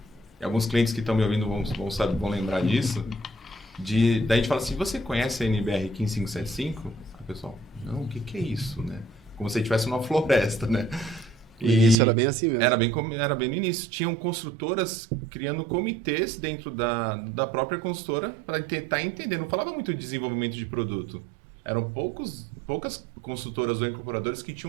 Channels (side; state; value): left; drops out; at 12.0 s